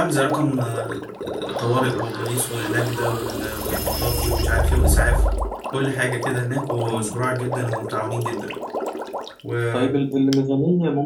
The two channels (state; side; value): identical; both; correlation 1.00